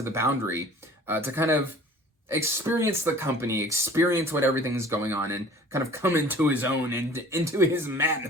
the Boundary to kind of experience the company, experience what everything's going on, and kind of come into his own and into his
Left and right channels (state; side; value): normal; both; correlation 0.47